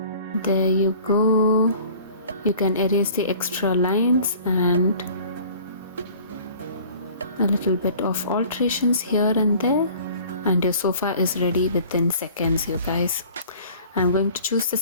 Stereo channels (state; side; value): inverted; both; correlation -0.48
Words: There you go. You can erase the extra lines and a little bit of alterations here and there, and your sofa is ready within seconds, you guys. I'm going to choose the